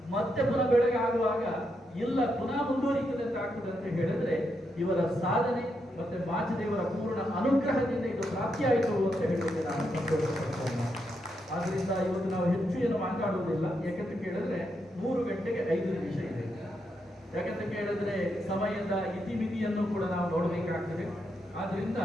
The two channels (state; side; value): normal; both; correlation 0.82